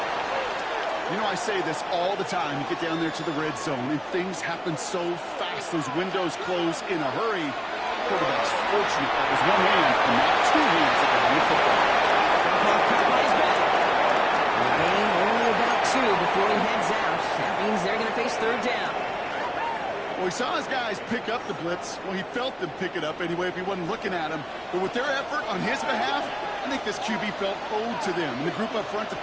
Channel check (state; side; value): identical; both; correlation 1.00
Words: You know, I say this all the time. You get down there to the red zone, and things happen so fast. Those windows close in a hurry. Quarterback's fortunate that was one hand and not two hands at the football. Caught by his back. And the game only about 2 before he heads out. That means they're going to face 3rd down. Well, he saw his guys pick up the blitz. Well, he felt them pick it up anyway if he wasn't looking at him. But with their effort on his behalf, I think this QB felt owed to them. And the group up front to